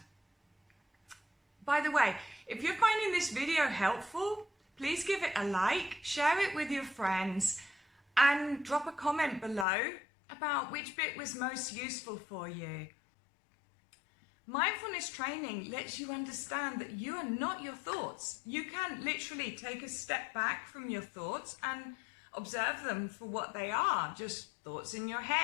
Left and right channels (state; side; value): drops out; right; at 9.7 s